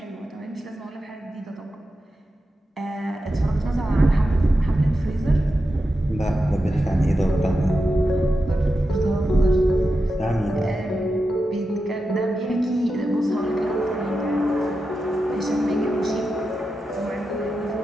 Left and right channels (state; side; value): normal; both; correlation 0.90